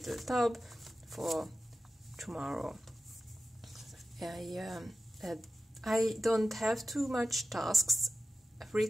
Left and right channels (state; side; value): normal; both; correlation 0.92